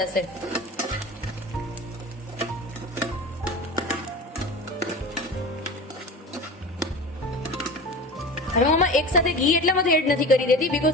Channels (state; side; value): normal; both; correlation 0.32